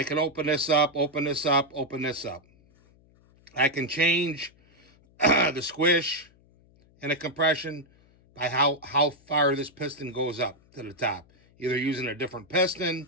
can open this up, open this up, open this up. I can change the squish and the compression by how far this piston goes up to the top. Either using a different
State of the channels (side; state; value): left; noise; hum, 30 dB below the sound